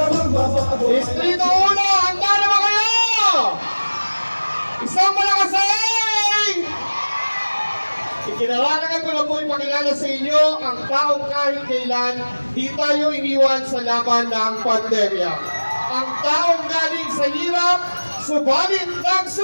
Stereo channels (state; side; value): inverted; both; correlation -1.00